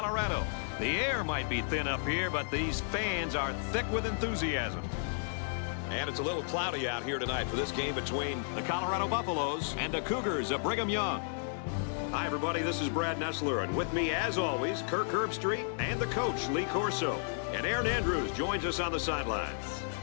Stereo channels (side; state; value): right; silent; digital silence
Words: The air might be thin up here, but these fans are thick with enthusiasm. And it's a little cloudy out here tonight for this game between the Colorado Buffaloes and the Cougars of Brigham Young. Hi, everybody. This is Brad Nessler, and with me, as always, Kirk Herbstreit and the coach, Lee Corso. And Aaron Andrews joins us on the sidelines.